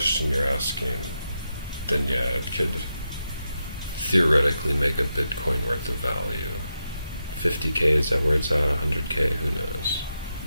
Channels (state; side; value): inverted; both; correlation -0.86